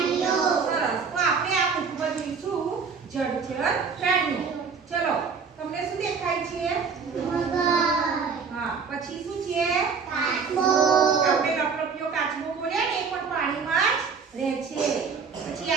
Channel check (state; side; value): quieter; left; 5.6 dB